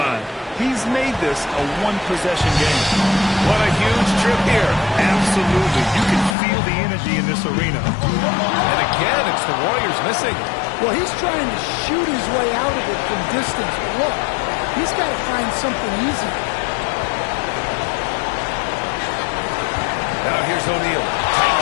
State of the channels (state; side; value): drops out; right; at 6.4 s